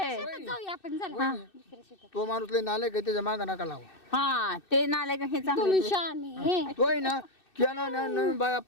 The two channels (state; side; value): late; right; 2.6 ms